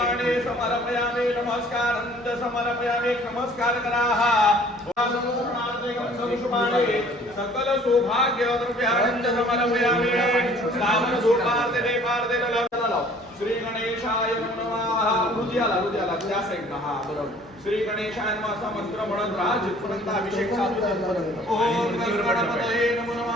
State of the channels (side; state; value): both; normal; correlation 0.54